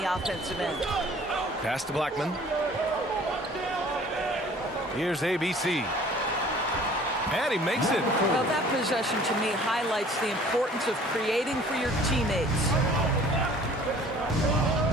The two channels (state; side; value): normal; both; correlation 0.51